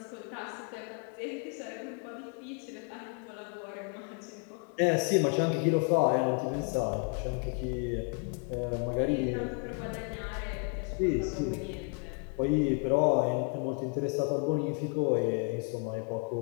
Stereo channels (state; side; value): quieter; right; 36.4 dB